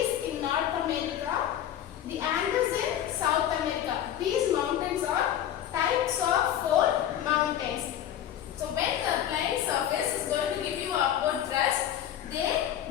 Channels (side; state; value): right; quieter; 10.8 dB